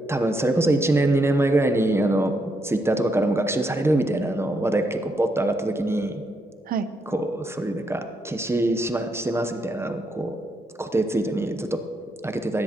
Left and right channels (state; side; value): normal; both; correlation 0.78